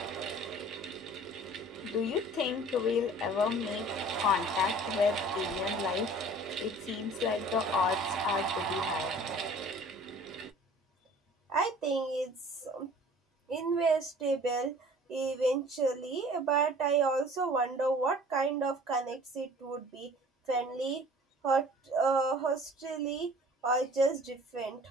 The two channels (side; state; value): both; normal; correlation 0.48